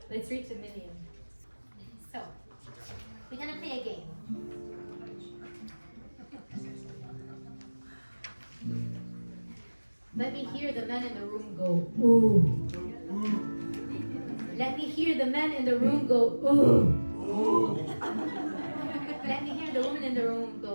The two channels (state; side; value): inverted; both; correlation -1.00